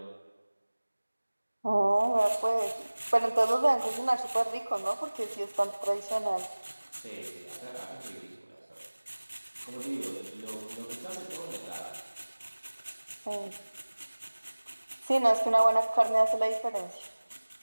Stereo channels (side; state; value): both; inverted; correlation -1.00